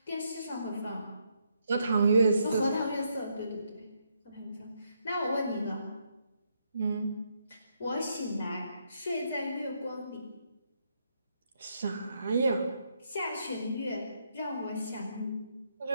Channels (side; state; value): both; inverted; correlation -0.77